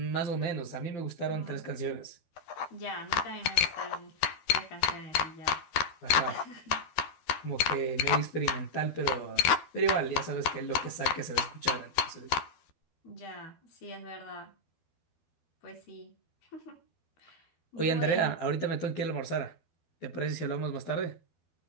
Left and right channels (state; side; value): late; right; 12 ms